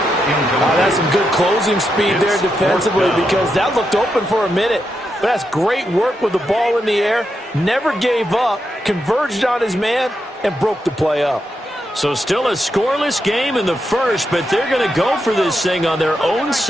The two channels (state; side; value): normal; both; correlation 0.84